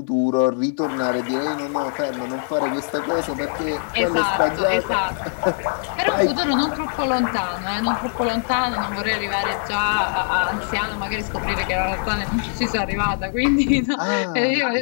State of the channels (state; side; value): silent; right; digital silence